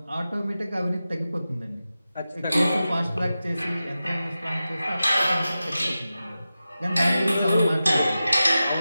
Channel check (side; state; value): both; inverted; correlation -0.94